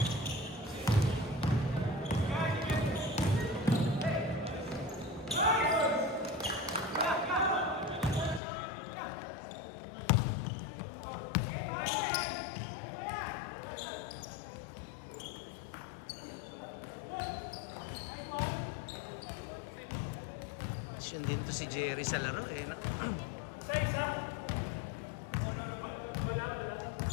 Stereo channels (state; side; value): drops out; right; at 8.4 s